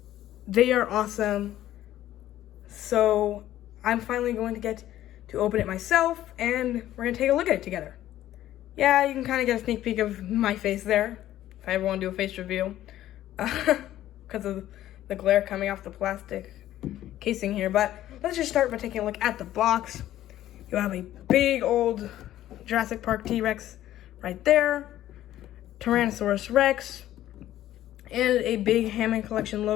They are awesome. So I'm finally going to get to open it myself and we're going to take a look at it together. Yeah, you can kind of get a sneak peek of my face there if I ever want to do a face reveal. Because of the glare coming off the plastic casing here. But let's just start by taking a look at the box. You have a big old Jurassic Park T-Rex right there, Tyrannosaurus Rex, and a big Hammond collection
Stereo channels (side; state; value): right; quieter; 13.3 dB